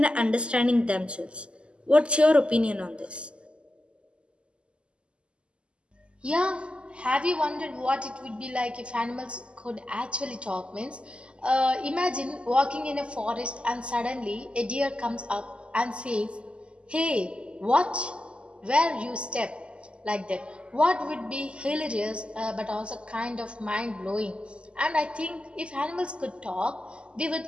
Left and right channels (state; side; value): late; left; 0.053 ms